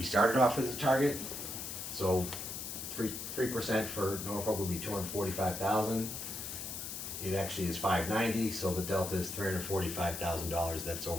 started off as a target. So 3% for Norfolk would be 245,000. It actually is 590, so the delta is $345,000. That's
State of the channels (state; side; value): noise; left; hiss, 6 dB below the sound